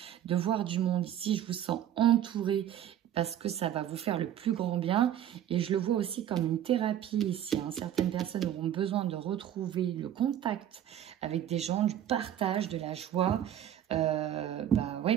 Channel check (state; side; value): quieter; left; 10.8 dB